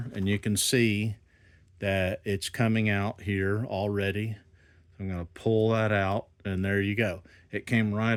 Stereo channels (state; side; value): identical; both; correlation 1.00